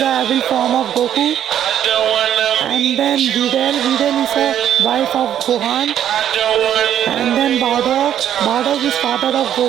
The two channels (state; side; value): quieter; left; 10.4 dB